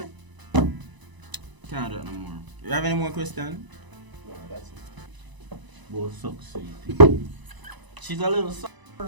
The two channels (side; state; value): left; late; 1.0 ms